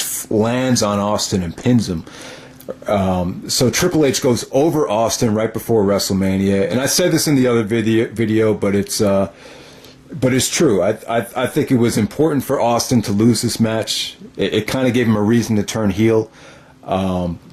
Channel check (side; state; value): both; identical; correlation 1.00